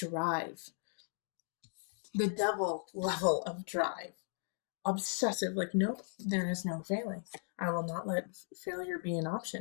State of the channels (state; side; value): silent; right; 53 dB below the other